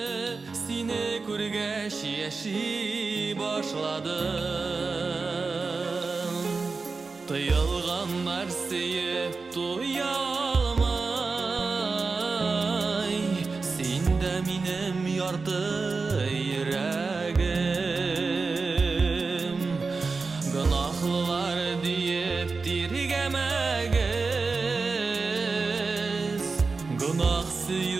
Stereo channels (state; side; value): quieter; left; 4.2 dB